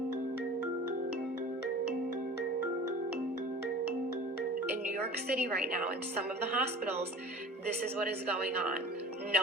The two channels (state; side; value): normal; both; correlation 0.40